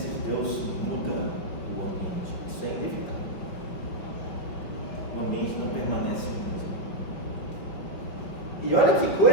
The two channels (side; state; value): right; late; 5.8 ms